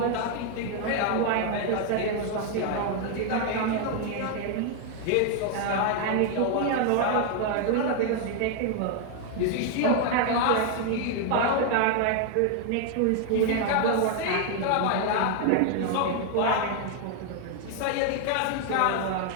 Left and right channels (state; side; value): different; both; correlation 0.00